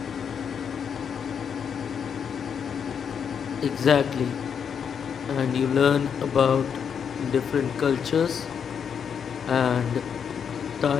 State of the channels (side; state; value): right; quieter; 7.3 dB